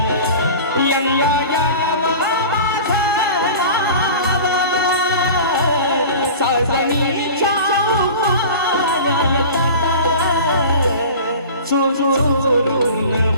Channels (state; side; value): inverted; both; correlation -0.37